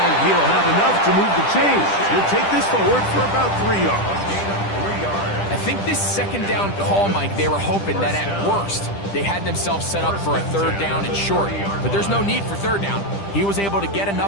he'll have enough to move the chains. He'll take this forward for about 3 yards. I think this second down call, Mike, they were hoping that at worst they had themselves set up for a 3rd down and short. But there's no need for 3rd down. He was able to get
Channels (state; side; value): late; right; 10 ms